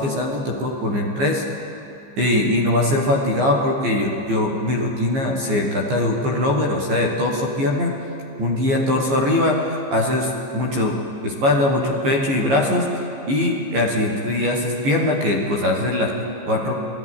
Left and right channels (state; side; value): late; left; 15 ms